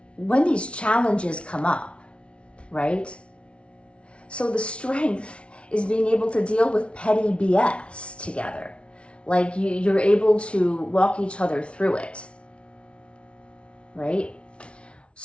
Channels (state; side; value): late; right; 0.060 ms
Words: challenges come up, right? So the strength is being able to deal with petty BS together. Like you're able to walk each other through it, right?